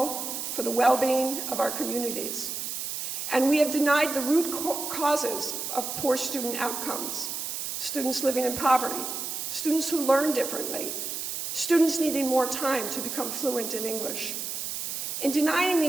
for the well-being of our communities. And we have denied the root causes of poor student outcomes: students living in poverty, students who learn differently, students needing more time to become fluent in English. In denying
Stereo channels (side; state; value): right; noise; hiss, 4 dB below the sound